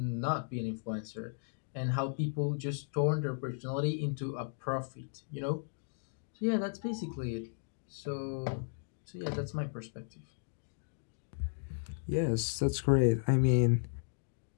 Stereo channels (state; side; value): silent; right; digital silence